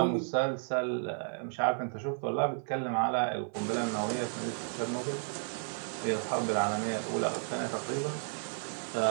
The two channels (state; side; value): silent; left; 56 dB below the other